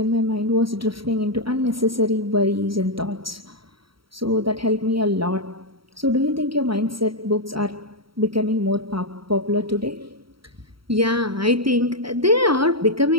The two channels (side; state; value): left; late; 0.74 ms